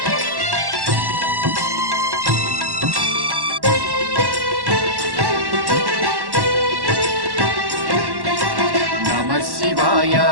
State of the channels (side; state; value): left; late; 1.1 ms